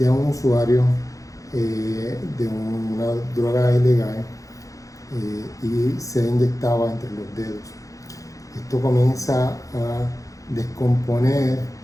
un usuario de una droga ilegal y se inyectaba entre los dedos. Esto comienza a descomponer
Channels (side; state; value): right; late; 0.16 ms